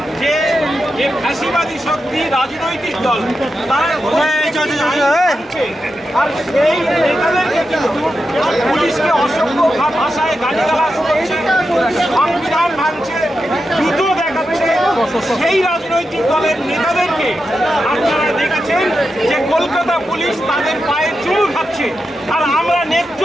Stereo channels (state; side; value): normal; both; correlation 0.88